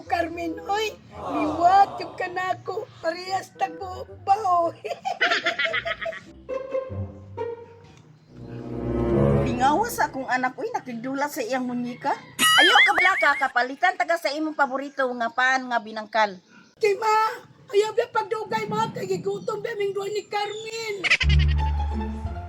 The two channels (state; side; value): identical; both; correlation 1.00